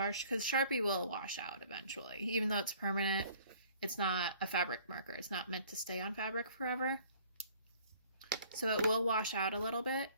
because Sharpie will wash out eventually. Even though it's permanent, it's not a fabric marker. It's not meant to stay on fabric forever. So it will wash out a little bit,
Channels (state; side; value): inverted; both; correlation -0.55